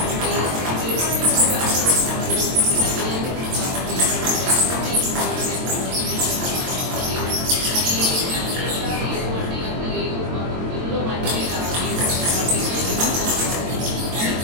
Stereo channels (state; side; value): late; left; 22 ms